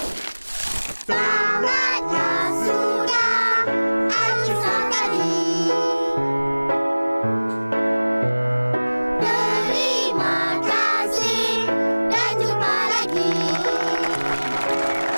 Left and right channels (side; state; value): both; inverted; correlation -1.00